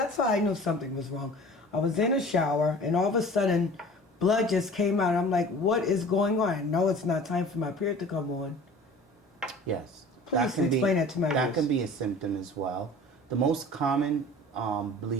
how I knew something was wrong. I was in a shower, and all of a sudden, blood just came out. I'm like, what is going on? No, it's not time for my period to come on. Yes. Please explain that to my That viewers. can be a symptom as well. The most common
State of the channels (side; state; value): both; normal; correlation 0.43